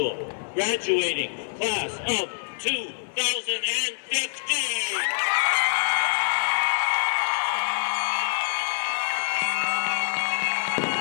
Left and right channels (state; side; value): silent; right; 61 dB below the other